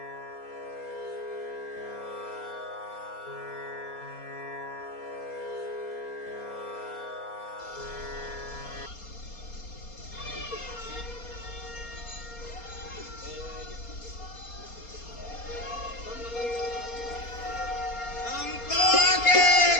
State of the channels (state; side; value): late; right; 4.3 ms